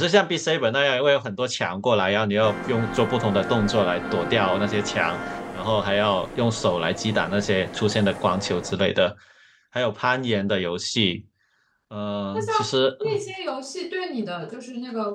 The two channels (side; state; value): both; identical; correlation 1.00